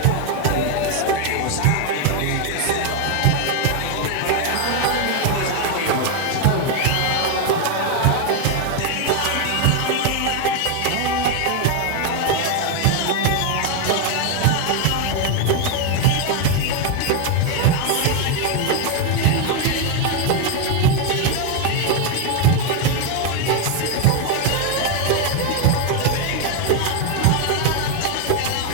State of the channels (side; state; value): both; different; correlation 0.01